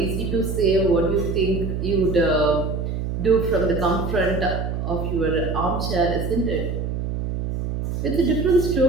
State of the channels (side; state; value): right; noise; hum, 3 dB below the sound